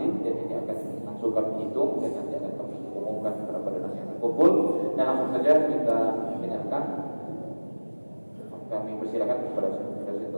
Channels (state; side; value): inverted; both; correlation -1.00